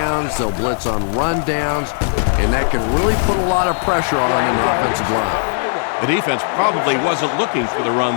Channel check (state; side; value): silent; right; digital silence